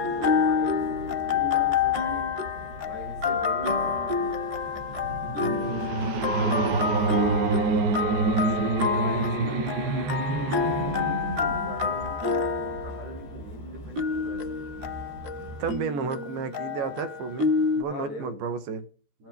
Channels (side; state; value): left; late; 14 ms